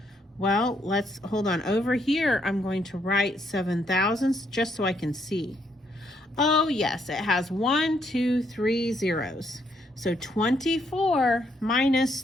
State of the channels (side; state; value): both; normal; correlation 0.73